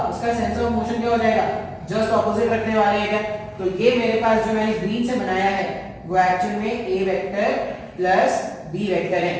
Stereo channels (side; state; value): both; identical; correlation 1.00